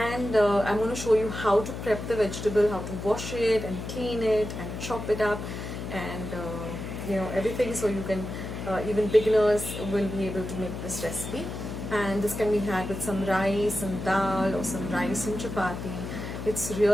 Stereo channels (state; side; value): noise; left; hum, 7 dB below the sound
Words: I'm going to show you how to prep the vegetable, how to wash it and clean it and chop it up, and everything, so you can even beginners will be able to make this recipe. And this can be had with some rice and dal or some rice and chapati. It's